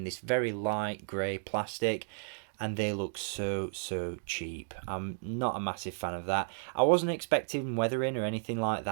this very light grey plastic, and they look so cheap. I'm not a massive fan of that. I wasn't expecting weathering or anything like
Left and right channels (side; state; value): left; silent; digital silence